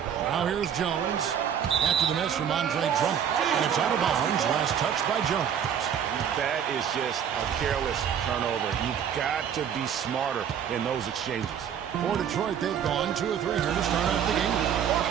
Now here's Jones after the miss from Andre Drummond. And it's out of bounds. Last touch by Jones. That is just a careless turnover. You've got to be smarter in those exchanges. For Detroit, they've gone 2 of 3 here to start off the game.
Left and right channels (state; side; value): quieter; left; 8.5 dB